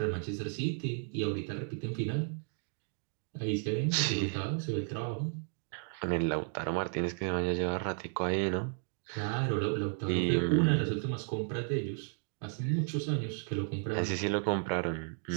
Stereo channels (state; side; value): silent; left; 55 dB below the other